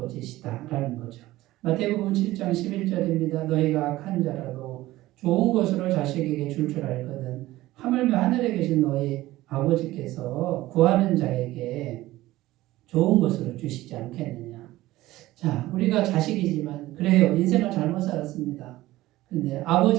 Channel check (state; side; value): quieter; left; 17.0 dB